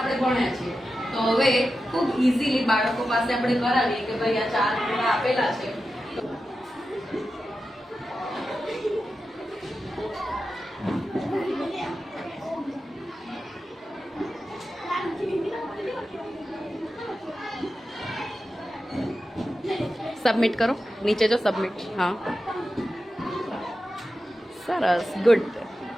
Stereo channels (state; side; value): normal; both; correlation 0.91